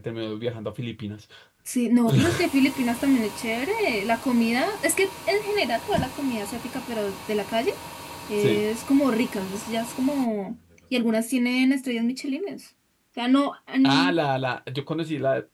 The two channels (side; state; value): both; identical; correlation 1.00